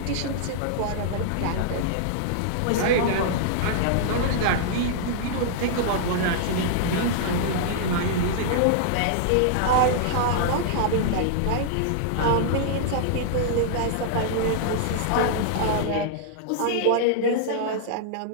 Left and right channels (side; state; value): both; different; correlation -0.01